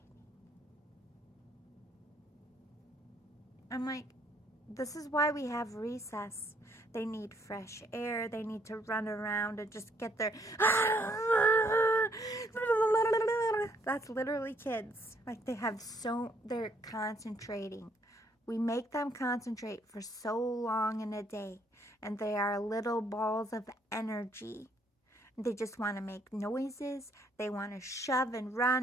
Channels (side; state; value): both; normal; correlation 0.68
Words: I'm like, this is why we have recess. They need fresh air. They need to run around and just get their... That's literally kids. Like, they're concentrating. We make them concentrate for so long in a day. And they are little balls of energy. They just want to make noises. They want to shove and